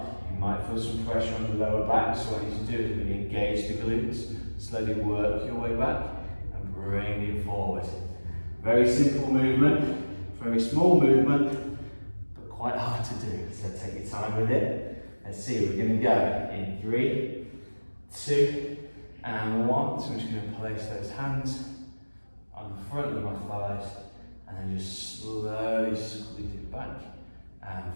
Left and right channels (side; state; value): both; inverted; correlation -1.00